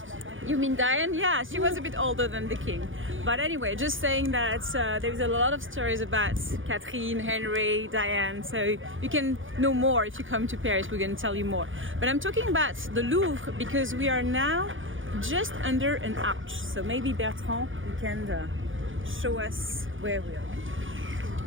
You mean Diane? Yeah, she was a bit older than the king. But anyway, just saying that there is a lot of stories about Catherine, Henry, Diane. So you can know more if you come to Paris. We're going to tell you more. But I'm talking about the Louvre because we are now just under an arch. So maybe Bertrand, you can show us where we are.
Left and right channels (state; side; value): late; left; 0.57 ms